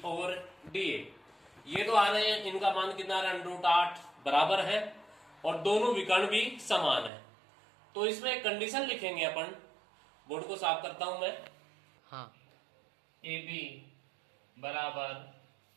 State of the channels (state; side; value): drops out; left; at 7.1 s